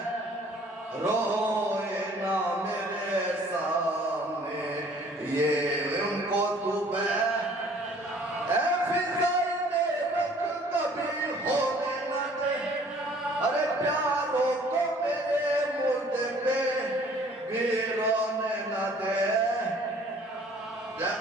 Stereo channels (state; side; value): normal; both; correlation 0.55